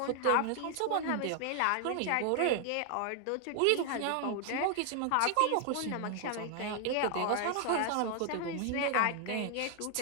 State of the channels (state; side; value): different; both; correlation 0.00